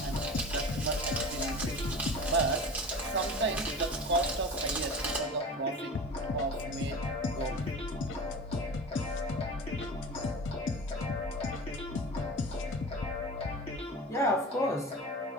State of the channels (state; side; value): normal; both; correlation 0.34